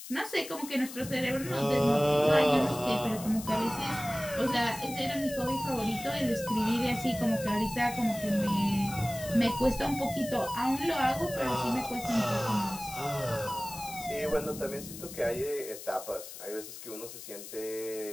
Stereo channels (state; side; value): noise; left; hiss, 12 dB below the sound